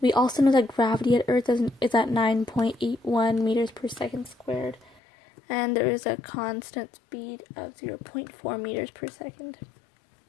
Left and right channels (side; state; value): right; drops out; at 5.0 s